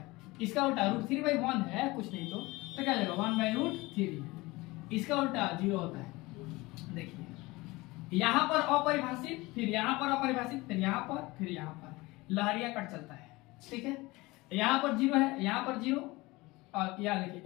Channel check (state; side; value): quieter; right; 21.8 dB